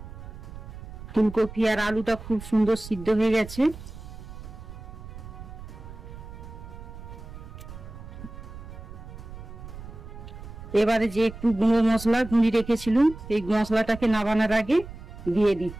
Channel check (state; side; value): noise; right; rumble, 13 dB below the sound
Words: ফুলকপি আর আলুটা খুব সুন্দর সিদ্ধ হয়ে গেছে। এবারে যে একটু গুঁড়ো মশলা গুঁড়ি রেখেছিলাম সেই মশলাটাকে নামানোর আগে দিয়ে